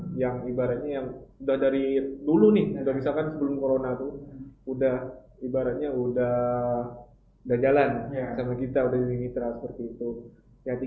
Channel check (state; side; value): identical; both; correlation 1.00